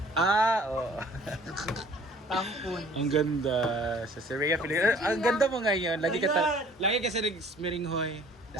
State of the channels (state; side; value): normal; both; correlation 0.53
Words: Oo. tampon. Ang ganda. Sa Syria, ang ganda mo ngayon. Lagi ka sa Smiringhoy.